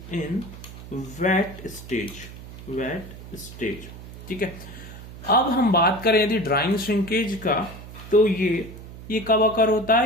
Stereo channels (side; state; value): right; noise; hum, 14 dB below the sound